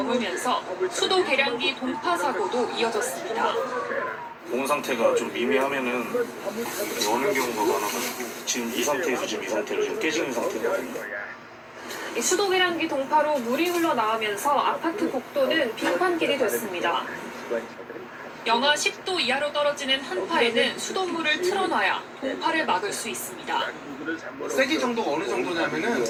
수도 계량기 동파 사고도 이어졌습니다. 몸 상태가 좀 미미하면은 오는 경우가 많아가지고 지금 이 상태에서 이 상태로 좀 깨지는 상태거든요. 수도 계량기 동파로 물이 흘러나오면서 아파트 복도는 빙판길이 됐습니다. 영하 10도 이하로 떨어지는 한파에는 수돗물을 틀어놔야 동파를 막을 수 있습니다. 세기 정도가 어느 정도냐면은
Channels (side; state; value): both; identical; correlation 1.00